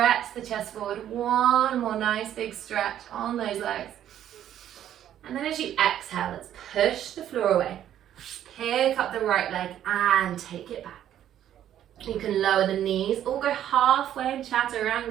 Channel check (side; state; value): left; quieter; 11.0 dB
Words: the chest forward. One more nice big stretch on those legs. And then as you exhale, let's push the floor away. Pick up the right leg and take it back. You can lower the knees or go halfway in